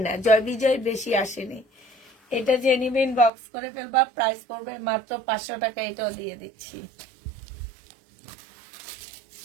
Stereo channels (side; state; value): left; drops out; at 3.3 s